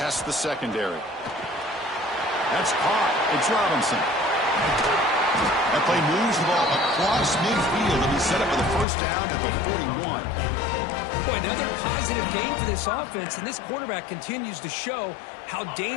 the secondary. That's caught. It's Robinson. That play moves the ball across midfield, and we set up for the first down at the 41. Boy, another positive game for this offense, and this quarterback continues to show how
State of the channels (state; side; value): drops out; right; at 8.8 s